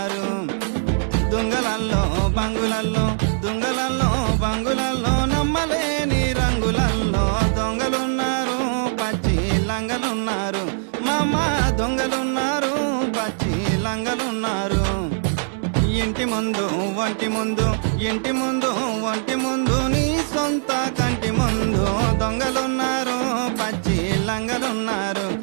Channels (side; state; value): left; silent; digital silence